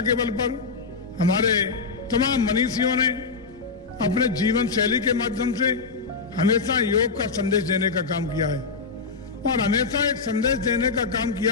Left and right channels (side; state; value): right; quieter; 4.7 dB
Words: बल पर, हमारे तमाम मनीषियों ने अपने जीवन शैली के माध्यम से हमेशा योग का संदेश देने का काम किया है और हमेशा एक संदेश देने का काम